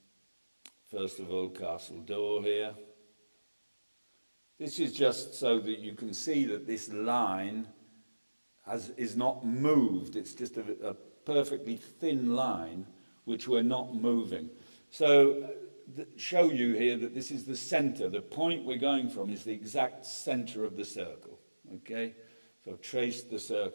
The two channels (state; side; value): inverted; both; correlation -1.00